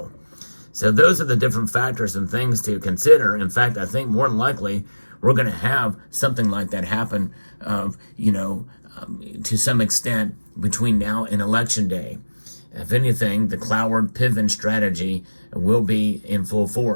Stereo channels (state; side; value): inverted; both; correlation -1.00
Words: So those are the different factors and things to consider. In fact, I think more than likely we're going to have something like that happen, to some extent between now and Election Day. If anything, the Cloward Piven strategy will be in full